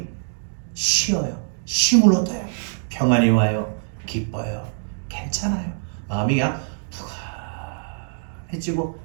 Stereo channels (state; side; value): silent; left; digital silence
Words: 쉬어요. 쉼을 얻어요. 평안이 와요. 기뻐요. 괜찮아요. 마음이 그냥 푸근해지고